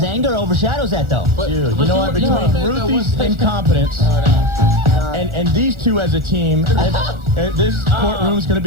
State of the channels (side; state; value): left; late; 1.4 ms